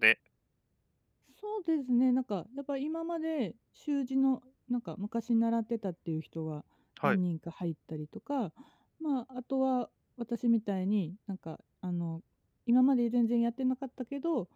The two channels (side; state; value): both; identical; correlation 1.00